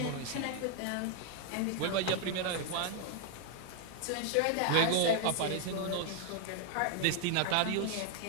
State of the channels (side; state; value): both; different; correlation 0.00